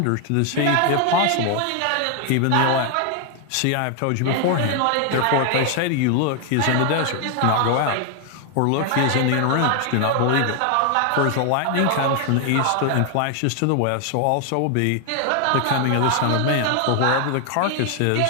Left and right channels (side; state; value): both; different; correlation 0.00